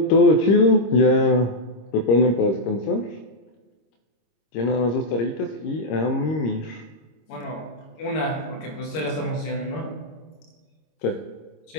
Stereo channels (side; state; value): right; late; 26 ms